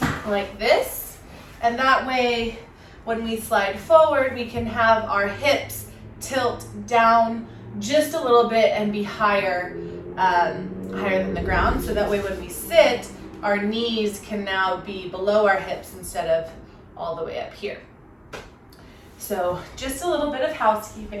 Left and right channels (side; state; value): both; identical; correlation 1.00